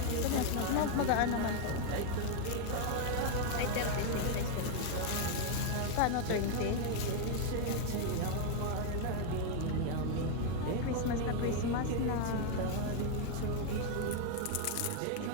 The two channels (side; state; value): both; different; correlation 0.00